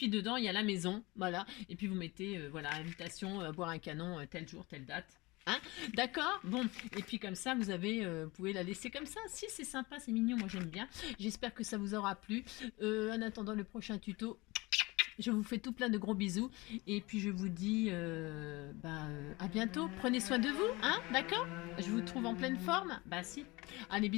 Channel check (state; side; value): quieter; right; 23.1 dB